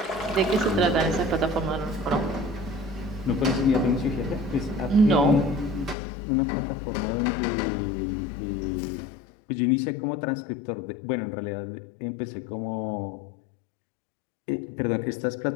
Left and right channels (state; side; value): drops out; right; at 6.0 s